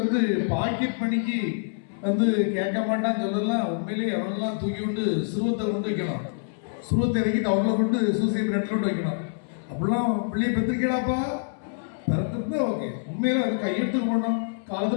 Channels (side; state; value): right; silent; 61 dB below the other